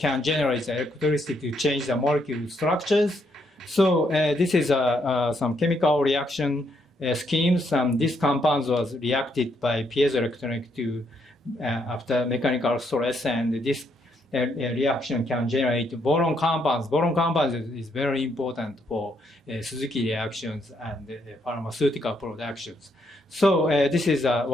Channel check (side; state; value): both; normal; correlation 0.75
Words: generate the electricity to change the molecule structures. So this is some chemical reaction schemes, and this compounds was reacted by piezoelectric to after mechanical stress, and this reaction can generate boron compounds. Boron compounds is very important for Suzuki reactions and pharmaceutical productions. So this is a